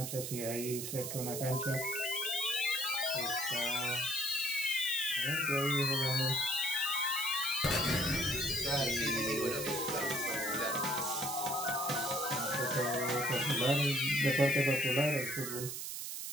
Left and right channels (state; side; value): noise; right; hiss, 5 dB below the sound